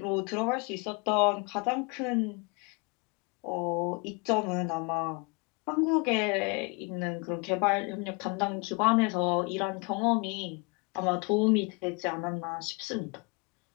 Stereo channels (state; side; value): quieter; right; 31.2 dB